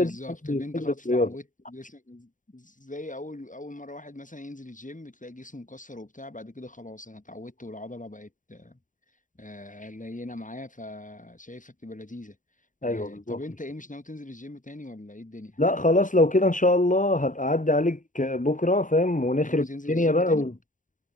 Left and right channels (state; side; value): late; right; 0.38 ms